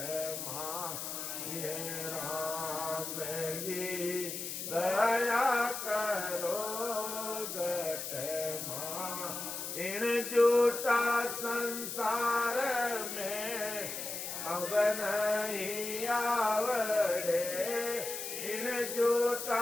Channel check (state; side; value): noise; left; hiss, 5 dB below the sound